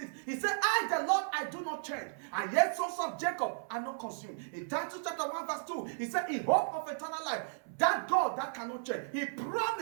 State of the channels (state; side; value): silent; left; 55 dB below the other